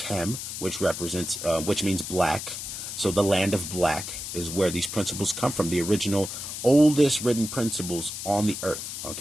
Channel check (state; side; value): noise; left; hiss, 7 dB below the sound